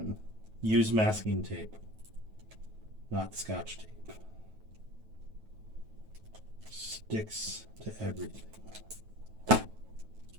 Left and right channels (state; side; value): late; left; 9.2 ms